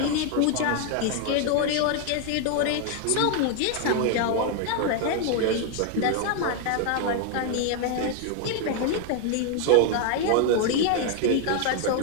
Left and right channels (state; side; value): different; both; correlation 0.01